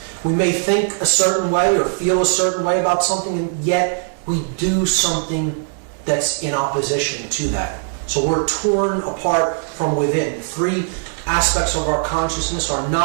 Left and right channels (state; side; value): silent; left; 65 dB below the other